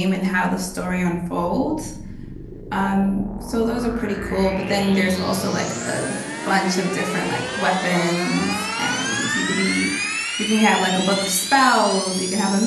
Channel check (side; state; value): both; identical; correlation 1.00